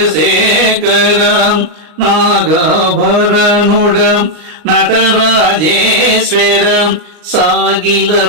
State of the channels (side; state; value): left; late; 39 ms